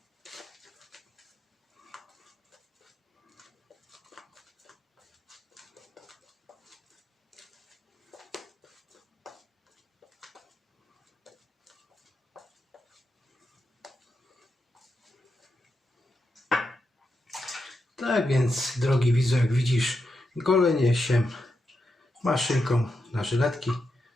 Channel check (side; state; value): both; normal; correlation 0.86